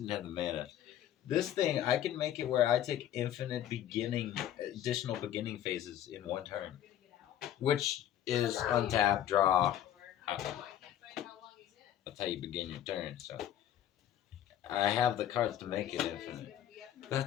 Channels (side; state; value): right; quieter; 11.3 dB